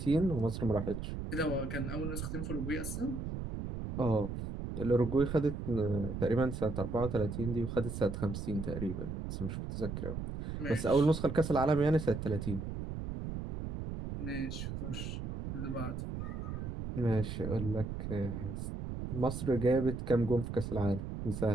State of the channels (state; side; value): noise; right; rumble, 5 dB below the sound